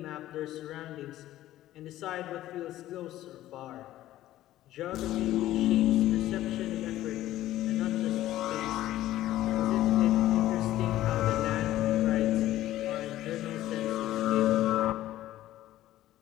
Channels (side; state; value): right; quieter; 14.3 dB